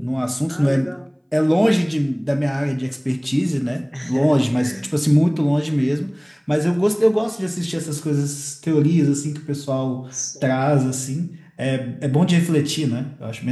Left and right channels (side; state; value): both; identical; correlation 1.00